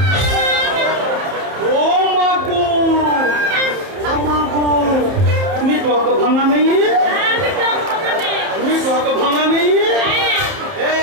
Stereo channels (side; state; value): left; late; 30 ms